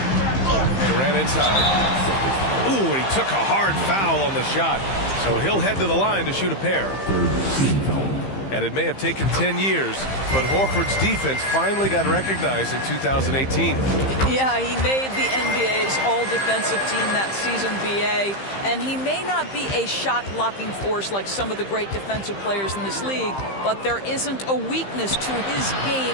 Durant inside. Ooh, and he took a hard foul on the shot. So he'll head to the line to shoot a pair. And it may have taken 10 years, but Horford's defense finally got recognized in 2018. Yeah, he made the NBA's all-defensive team that season, BA, and he may not be a shot-blocking force like some of the great defensive players in this league, but there isn't a weakness to his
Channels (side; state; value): right; late; 15 ms